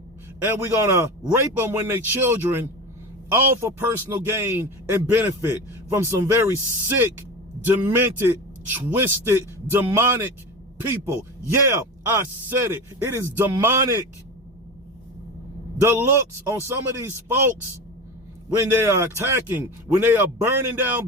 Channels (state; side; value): normal; both; correlation 0.27